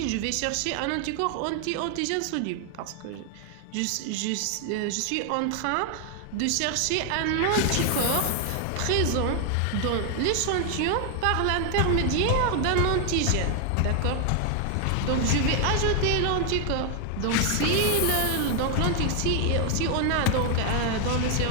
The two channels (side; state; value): both; different; correlation 0.00